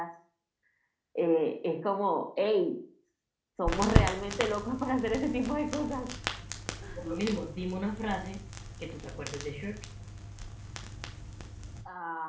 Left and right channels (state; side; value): identical; both; correlation 1.00